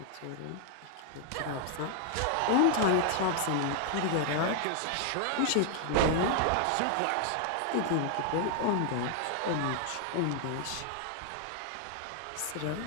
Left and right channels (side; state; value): both; different; correlation 0.00